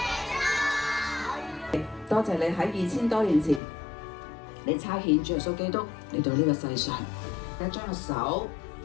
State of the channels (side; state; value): right; drops out; at 3.6 s